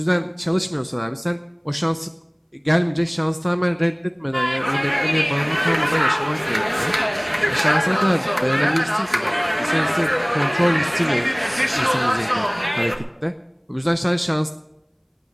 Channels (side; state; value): both; identical; correlation 1.00